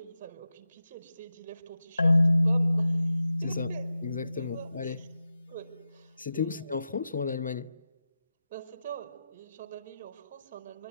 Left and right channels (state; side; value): inverted; both; correlation -0.91